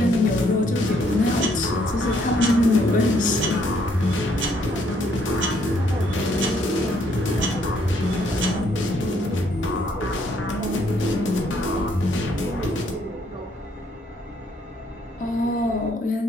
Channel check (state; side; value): normal; both; correlation 0.68